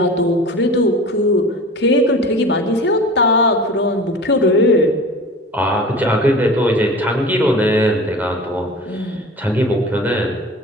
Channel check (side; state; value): both; normal; correlation 0.37